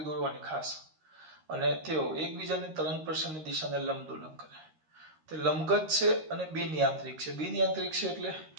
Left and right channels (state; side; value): late; left; 13 ms